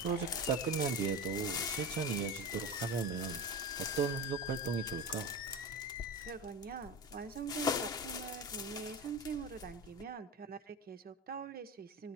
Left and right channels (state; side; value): normal; both; correlation 0.25